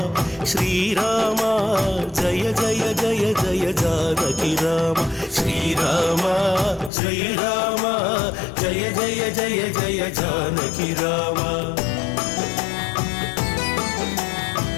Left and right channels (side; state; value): right; drops out; at 6.9 s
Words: శ్రీరామ జయ జయ జయ జయ జానకి రామ. శ్రీరామ జయ రామ జయ జయ జయ జయ జానకి రామ.